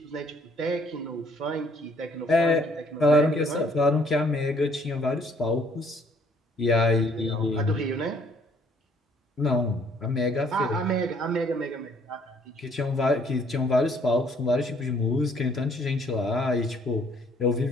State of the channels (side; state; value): both; normal; correlation 0.63